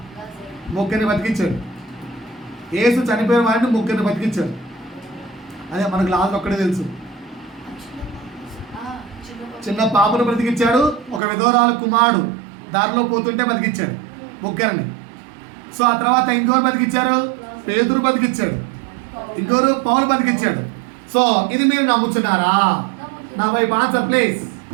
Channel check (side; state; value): left; drops out; at 11.2 s